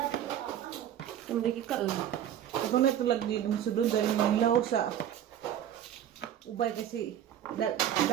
Hindi ka Ako na ito lagi masudod dahil yung law sa ubay kasi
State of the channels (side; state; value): left; quieter; 10.5 dB